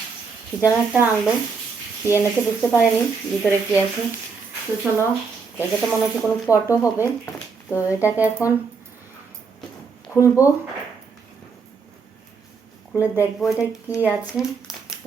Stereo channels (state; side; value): quieter; left; 5.1 dB